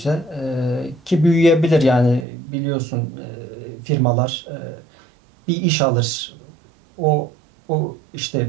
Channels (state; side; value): drops out; left; at 2.2 s